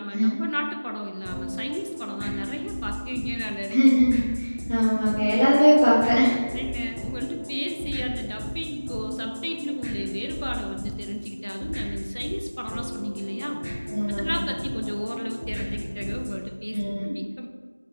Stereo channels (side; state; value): both; inverted; correlation -1.00